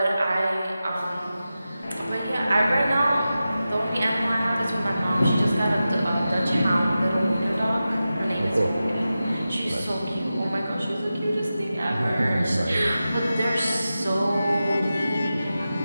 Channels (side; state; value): both; inverted; correlation -0.93